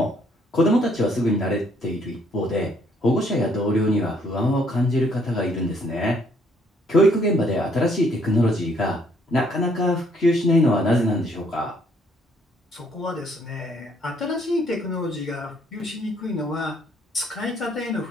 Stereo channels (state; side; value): normal; both; correlation 0.66